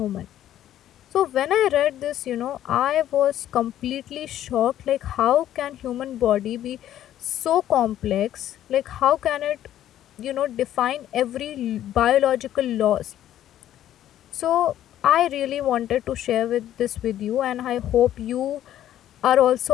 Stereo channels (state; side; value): quieter; right; 12.0 dB